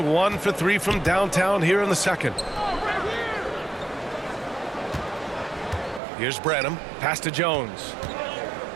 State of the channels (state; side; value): drops out; left; at 6.0 s